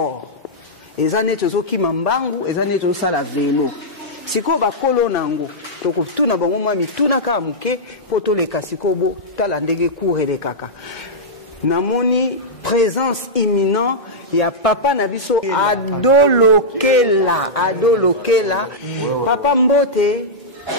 ezane tozo kima mbangu ezane tozo sala vélo siko ba kolo nango toko tuna bango mwa mituna ka muke poto le kasiko bo tala ndenge courre kaka namoni présence imminente ya papa na biso adolokela papa mbote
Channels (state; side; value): normal; both; correlation -0.09